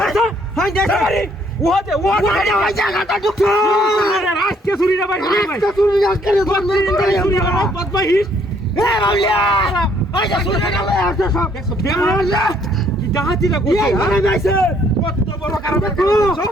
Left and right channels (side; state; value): both; normal; correlation 0.65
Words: হাই দে ওহাতে ওহাতে ওই জায়গাটা ঢুকছো আজকে চুরি না ভাই আজকে চুরি না করে চুরি না বদমাইশ এ বাউলিয়া ওই যে চুরি না লয় আসছে সব দেখছো বেমালা কি ডাহাতিটা করছে মানে যাইছে কত বড় কারণ করছো